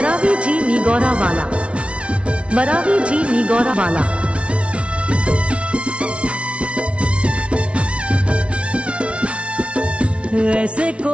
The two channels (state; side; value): late; left; 0.060 ms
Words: जी निगौरा वाला, बरावी जी निगौरा वाला। ऐसे